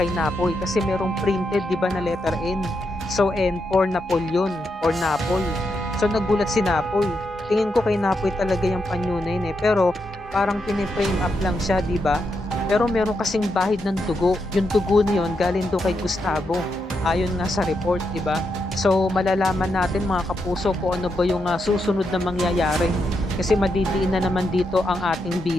Napoy, kasi merong printed, 'di ba, na letter N. So N for Napoleon or Napoy. So nagulat si Napoy. Tingin ko kay Napoy talaga yung panyo na yun eh. Pero parang piniframe up lang siya, 'di ba? Pero meron kasing bahid ng dugo. Yung dugo na yun galing do kay Gustavo. Ayon nga sa report, 'di ba? So malalaman natin mga kapuso kung ano ba yung susunod na mangyayari. Kasi madidiin na naman dito ang ating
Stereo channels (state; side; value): normal; both; correlation 0.83